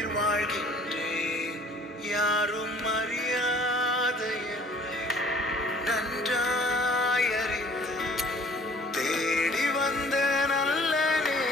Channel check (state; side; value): normal; both; correlation 0.53